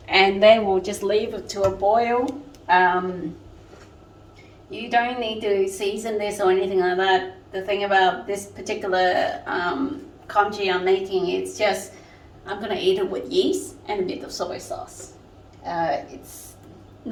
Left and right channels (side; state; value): both; identical; correlation 1.00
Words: And then we'll just leave it to a boil. You don't need to season this or anything like that. The thing about this particular congee I'm making, it's just I'm gonna eat it with yeast and a bit of soy sauce. It's